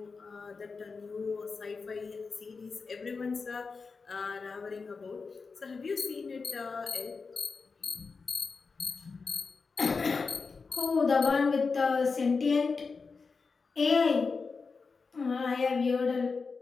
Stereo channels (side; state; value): right; quieter; 4.7 dB